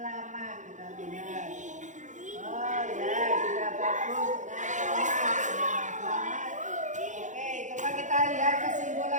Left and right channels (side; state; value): left; late; 0.36 ms